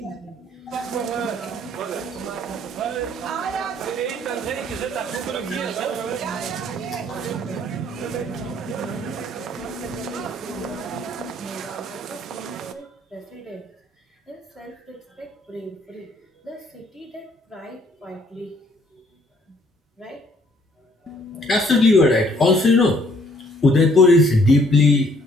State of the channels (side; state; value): both; normal; correlation 0.63